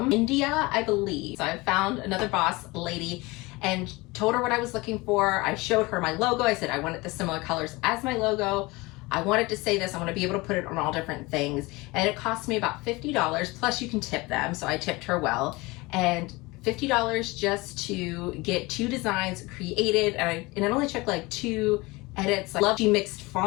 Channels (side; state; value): right; quieter; 23.1 dB